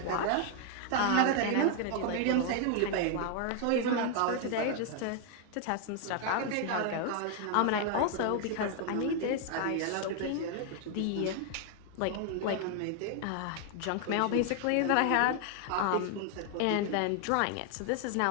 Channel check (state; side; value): different; both; correlation 0.00